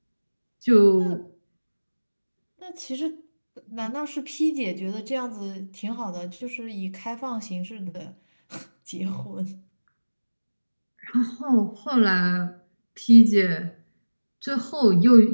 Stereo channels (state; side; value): inverted; both; correlation -1.00